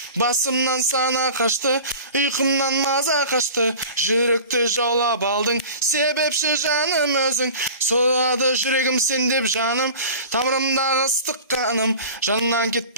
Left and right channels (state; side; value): inverted; both; correlation -0.39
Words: Басымнан сана қашты, ұйқымнан маза қашты, жүректі жаулап алдың, себепші жаным өзің. Соғады жүрегім сен деп жаным, тамырымдағы ыстық қаным, жаннан